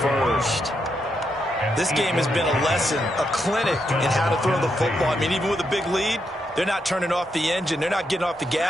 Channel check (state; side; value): normal; both; correlation 0.81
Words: This game has been a lesson, a clinic in how to throw the football. I mean, even with a big lead, they're not turning off the engine. They're not getting off the